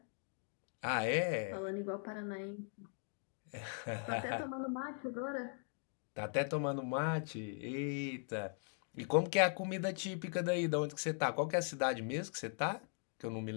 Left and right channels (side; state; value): right; silent; 51 dB below the other